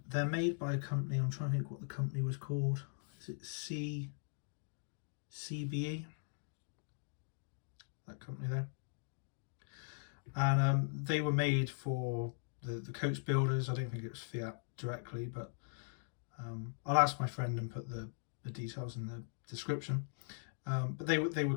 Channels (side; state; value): right; silent; digital silence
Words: They're made by a company. I'm trying to think what the company was called. Is it CBE? That company there. And they were made for the coach builders. I don't think it was Fiat directly, but I'll ask my friend and put the details in the description. But they were